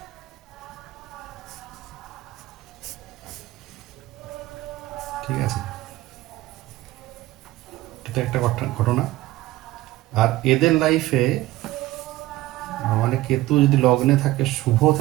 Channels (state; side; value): quieter; left; 17.1 dB